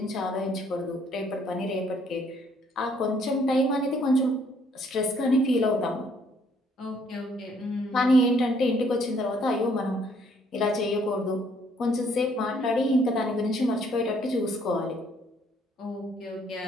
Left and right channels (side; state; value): both; normal; correlation 0.65